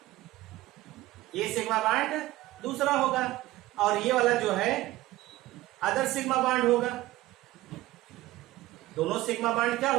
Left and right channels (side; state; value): left; quieter; 17.1 dB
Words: ये सिग्मा बॉन्ड दूसरा होगा, और ये वाला जो है अदर सिग्मा बॉन्ड होगा। दोनों सिग्मा बॉन्ड क्या